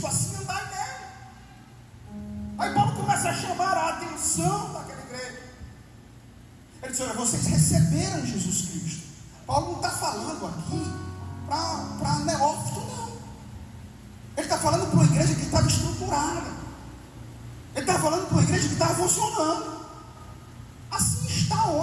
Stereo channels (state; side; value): identical; both; correlation 1.00